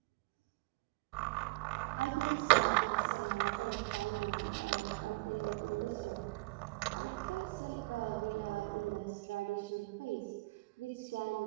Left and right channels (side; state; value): left; quieter; 24.7 dB